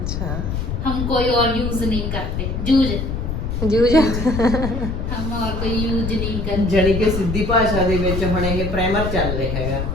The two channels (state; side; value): noise; left; rumble, 3 dB below the sound